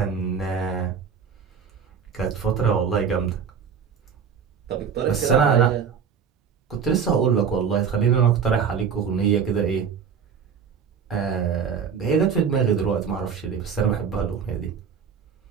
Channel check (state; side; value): quieter; left; 6.8 dB